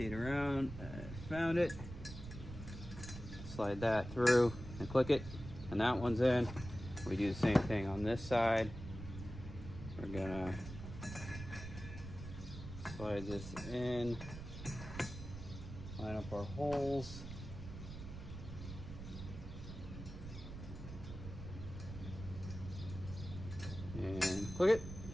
around, I found it. Slide that through and click it, and that one's in. We do the same thing on this side. We're gonna slide this in, line up our holes. And click it.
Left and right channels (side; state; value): right; noise; rumble, 10 dB below the sound